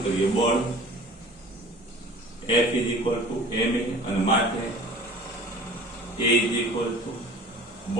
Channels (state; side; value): normal; both; correlation 0.44